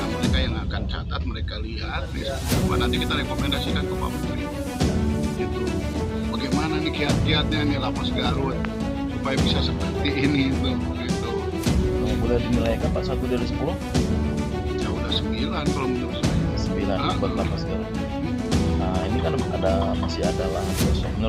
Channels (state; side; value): identical; both; correlation 1.00